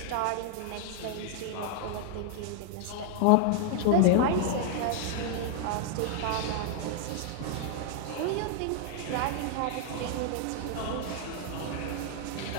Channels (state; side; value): different; both; correlation 0.00